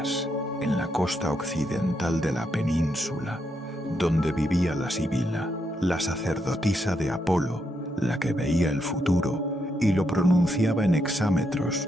en la costa occidental de la península, donde vivía la Sibila, la sacerdotisa de Apolo, la que veía el futuro y lo pronunciaba en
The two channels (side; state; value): both; normal; correlation 0.80